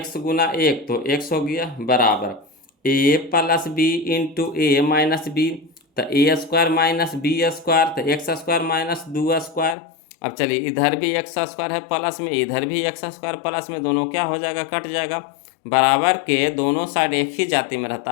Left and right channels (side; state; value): right; drops out; at 9.8 s